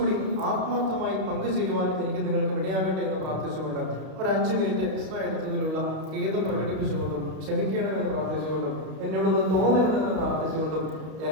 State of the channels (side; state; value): left; late; 32 ms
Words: ആത്മാർത്ഥമായി പങ്കുചേരുവാനും എനിക്ക് നിങ്ങൾക്ക് ഇടയാകട്ടെ എന്ന് പ്രാർത്ഥിച്ചുകൊണ്ട് ഒരു 5 മിനിറ്റ് എക്സ്ട്രാ എടുത്തതിലുള്ള ഖേദം പ്രകടിപ്പിച്ചുകൊണ്ടും ക്ഷമിക്കണമെന്ന് പ്രാർത്ഥിച്ചുകൊണ്ടും എന്നോടൊന്ന് തോന്നരുതെന്ന് പ്രാർത്ഥിച്ചുകൊണ്ടും